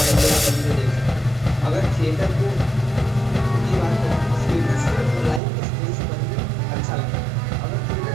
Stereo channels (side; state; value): left; drops out; at 5.4 s